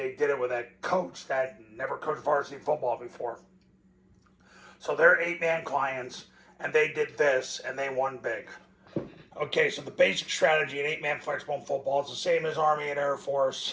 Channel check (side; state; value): both; identical; correlation 1.00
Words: did it with a coach that never coached varsity football before. So they're 8-man clients, and they did this, and they won big. Okay, so the basic strategy in 8-man flexbone football is the same as Army and Air